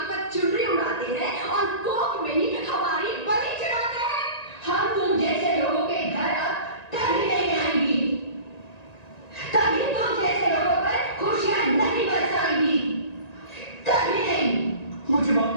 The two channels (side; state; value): right; late; 1.9 ms